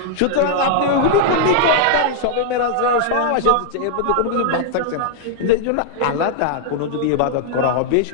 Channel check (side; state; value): both; different; correlation -0.01